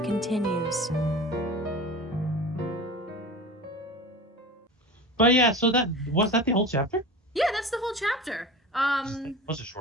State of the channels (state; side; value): normal; both; correlation 0.34